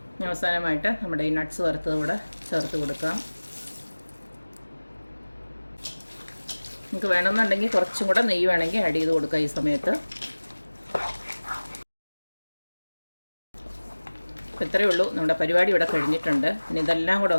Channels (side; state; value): both; inverted; correlation -1.00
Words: അവസാനമായിട്ട് നമ്മുടെ ഈ നട്ട്സ് വറുത്തതൂടെ ചേർത്ത് കൊടുക്കാം. നമുക്ക് വേണമെന്നുണ്ടെങ്കിൽ കുറച്ചും കൂടെ നെയ്യ് വേണമെങ്കിൽ ആഡ് ചെയ്ത് കൊടുക്കാം ഈ സമയത്ത്. ഇത്രയേ ഉള്ളൂ, നമ്മുടെ പരിപാടി ഇവിടെ കഴിഞ്ഞിട്ടുണ്ട്. ഇനി ഇതെല്ലാം കൂടെ